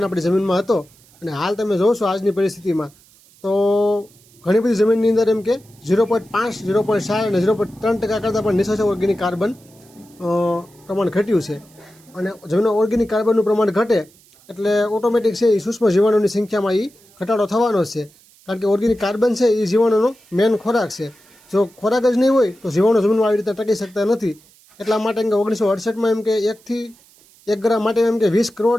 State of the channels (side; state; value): right; noise; hiss, 28 dB below the sound